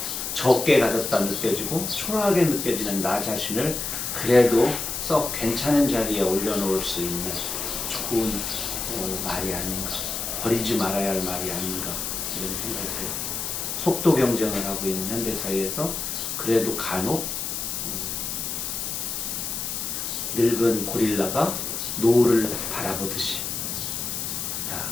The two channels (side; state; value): left; noise; hiss, 3 dB below the sound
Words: 적게 가졌다 느껴지고 초라하게 느껴지는 나 자신을 그래도 썩 괜찮은 자리에 올려놓을 수 있는 좋은 말이 아닌가, 버리지 말아야 할 말이 아닌가 이런 생각이 들어요. 속도 경쟁을 하고 있는 현대사회에서 그래도 간혹 늙은 고릴라가 노을을 바라보듯이